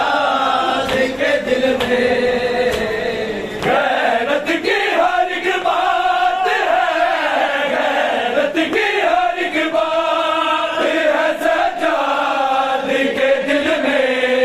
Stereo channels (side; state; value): both; identical; correlation 1.00